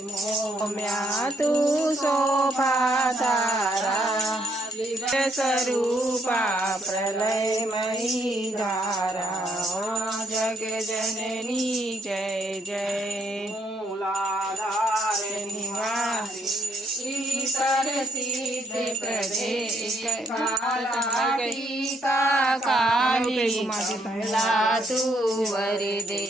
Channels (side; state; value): both; normal; correlation 0.72